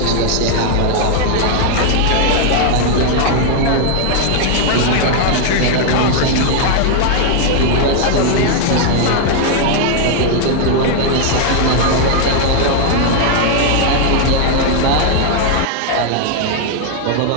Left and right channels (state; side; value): different; both; correlation 0.00